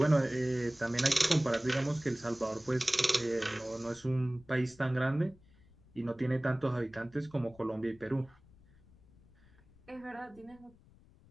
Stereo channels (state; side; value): noise; left; rumble, 27 dB below the sound